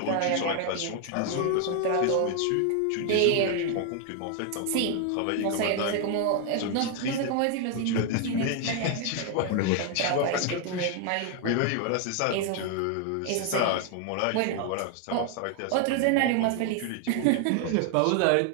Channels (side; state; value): both; different; correlation 0.00